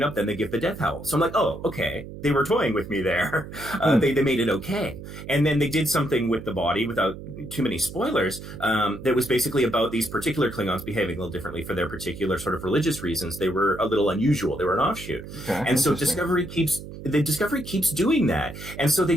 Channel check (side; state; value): right; noise; hum, 12 dB below the sound